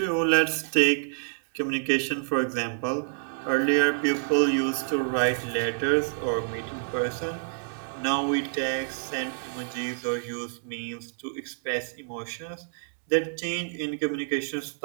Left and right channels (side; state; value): left; silent; digital silence